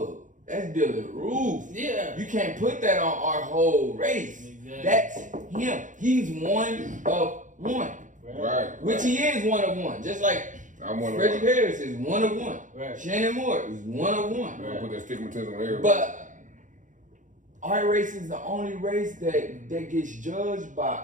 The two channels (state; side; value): late; left; 0.37 ms